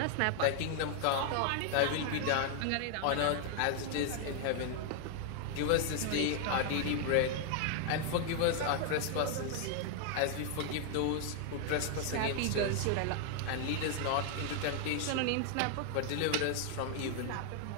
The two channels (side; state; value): both; different; correlation 0.00